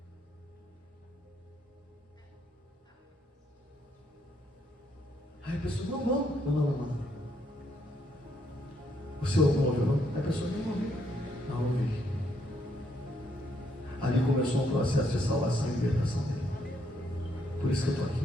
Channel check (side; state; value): both; normal; correlation 0.74